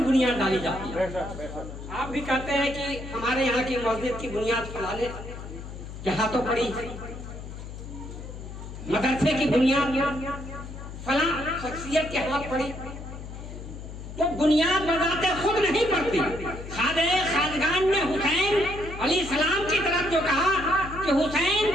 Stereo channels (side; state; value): left; noise; hum, 11 dB below the sound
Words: ڈالی جاتی ہے۔ آپ بھی کہتے ہیں کہ ہمارے یہاں کی مسجد کی بنیاد فلانے کے ہاتھوں پڑی، مدرسے کی بنیاد فلاں شخصیت کے ہاتھ پڑی، تو بنیاد بذات خود نہیں پڑتی۔ خواجہ خواجگان نے حسین علیہ السلام کی طرف جو کہا کہ حسین